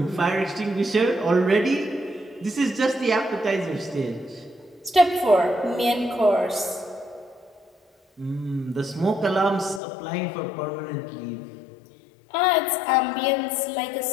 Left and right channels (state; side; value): drops out; right; at 9.8 s